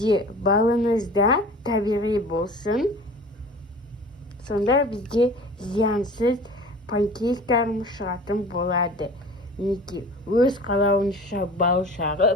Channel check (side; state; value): both; normal; correlation 0.41